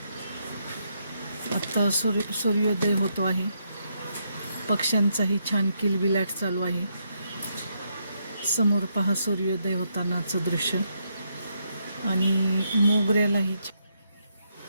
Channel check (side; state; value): both; inverted; correlation -0.78